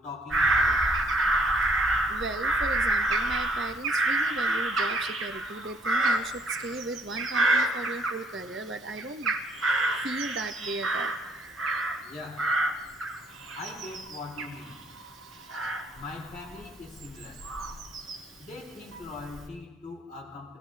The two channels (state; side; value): normal; both; correlation 0.64